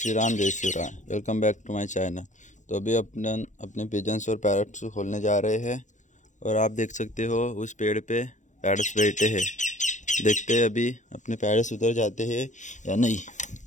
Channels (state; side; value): late; right; 0.35 ms